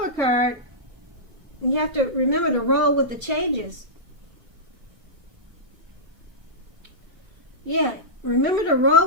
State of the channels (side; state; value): left; late; 1.2 ms